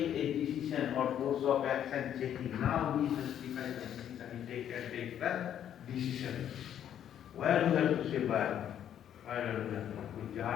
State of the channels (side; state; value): right; quieter; 10.0 dB